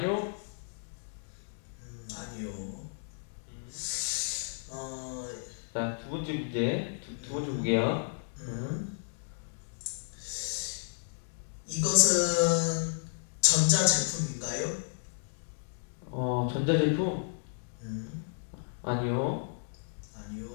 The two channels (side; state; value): right; silent; digital silence